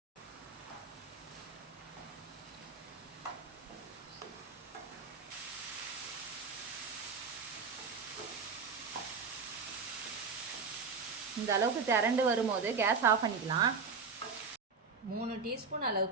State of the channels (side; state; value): left; quieter; 5.1 dB